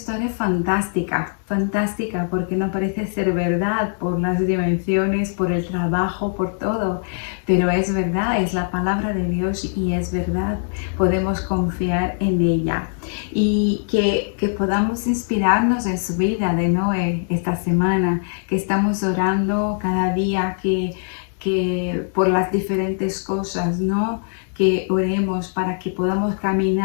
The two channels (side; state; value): right; silent; digital silence